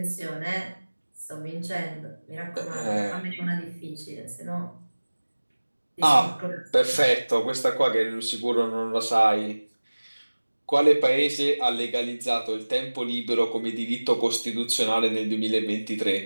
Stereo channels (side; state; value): both; inverted; correlation -1.00